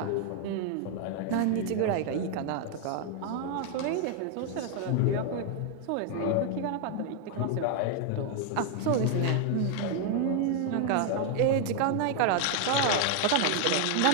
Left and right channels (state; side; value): different; both; correlation 0.00